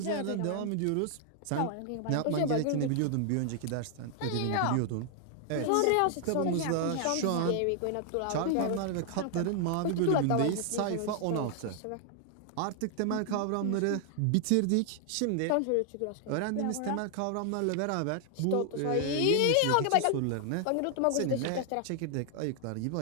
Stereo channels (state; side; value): different; both; correlation 0.00